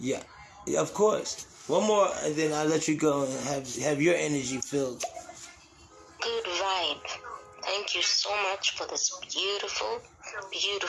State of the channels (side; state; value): both; identical; correlation 1.00